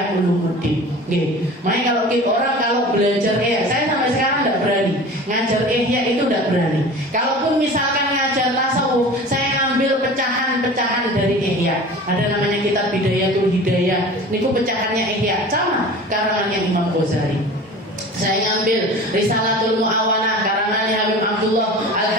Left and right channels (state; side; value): normal; both; correlation 0.38